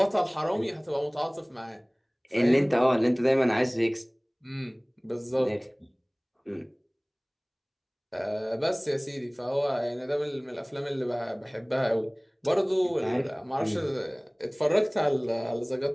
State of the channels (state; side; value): identical; both; correlation 1.00